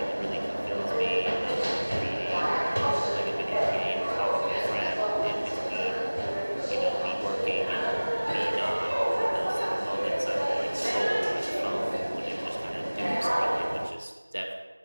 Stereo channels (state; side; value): inverted; both; correlation -1.00